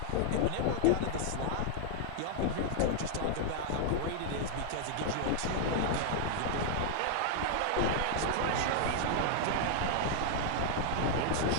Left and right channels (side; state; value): both; different; correlation 0.00